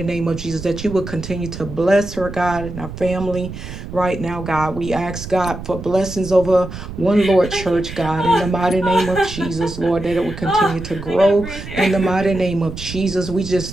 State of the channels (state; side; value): noise; right; rumble, 11 dB below the sound